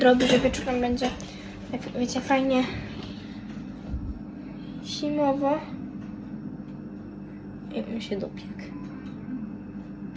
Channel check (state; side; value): identical; both; correlation 1.00